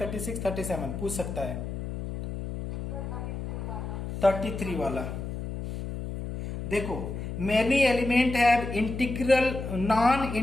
37 पूछ सकता है। 33 वाला देखो, many element have integral non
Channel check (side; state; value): left; noise; hum, 6 dB below the sound